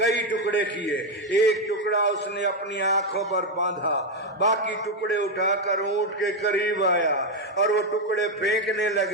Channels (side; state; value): both; normal; correlation 0.05